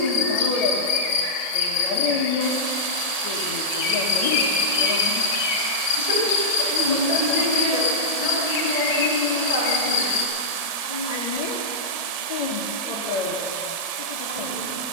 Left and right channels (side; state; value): left; late; 1.7 ms